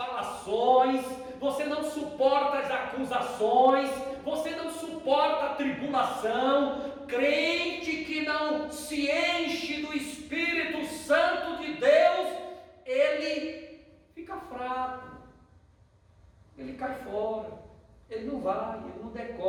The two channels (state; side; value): identical; both; correlation 1.00